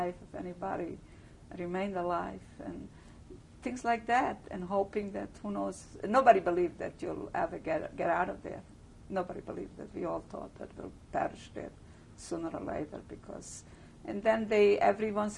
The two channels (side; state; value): both; identical; correlation 1.00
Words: if anybody remained alive, and things like that, and hoping that, who knows, nobody believed that you'll ever get out of there. Nobody believed that. We all thought that we'll perish there sooner or later, because, and then every